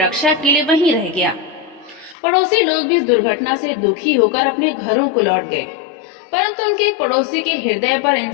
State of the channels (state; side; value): drops out; right; at 2.1 s